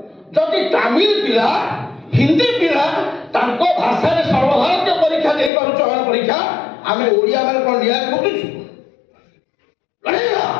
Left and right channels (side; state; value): right; drops out; at 5.5 s